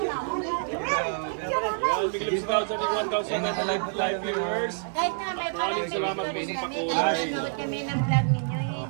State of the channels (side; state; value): left; silent; digital silence